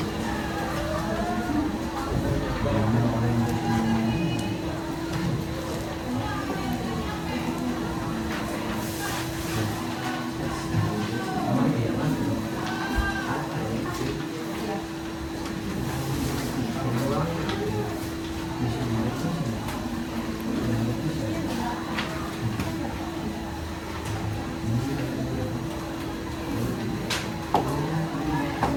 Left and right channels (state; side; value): identical; both; correlation 1.00